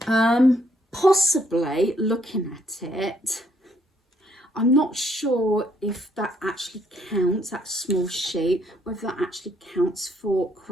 possibly looking at it, I'm not sure if that actually counts, that small sheet, whether that actually counts for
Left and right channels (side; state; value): both; normal; correlation 0.70